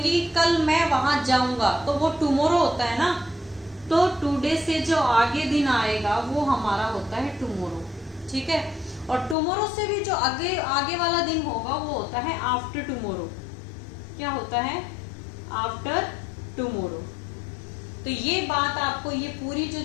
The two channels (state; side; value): drops out; right; at 9.3 s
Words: कल मैं वहां जाऊंगा, तो वो टुमारो होता है ना, तो टुडे से जो आगे दिन आएगा वो हमारा होता है टुमारो, ठीक है। और टुमारो से भी जो आगे वाला दिन होगा वो होता है आफ्टर टुमारो, क्या होता है, आफ्टर टुमारो। तो ये बात आपको, ये पूरी जो